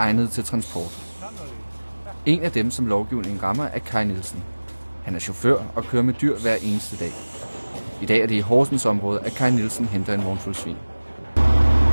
til transport. En af dem, som lovgivningen rammer, er Kai Nielsen. Han er chauffør og kører med dyr hver eneste dag. I dag er det i Horsens område, at Kai Nielsen henter en vognfuld svin.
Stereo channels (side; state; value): both; inverted; correlation -1.00